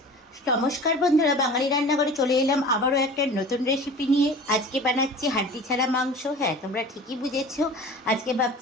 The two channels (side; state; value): both; normal; correlation 0.39